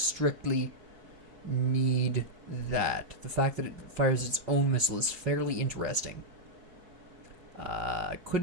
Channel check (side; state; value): left; late; 4.6 ms